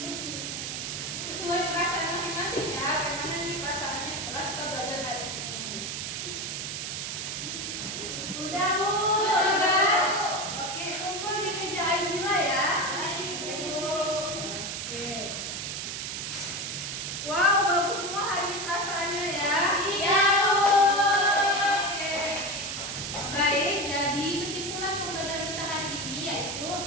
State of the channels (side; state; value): right; noise; hiss, 4 dB below the sound